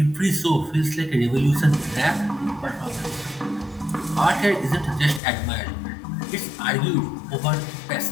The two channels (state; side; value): drops out; right; at 5.2 s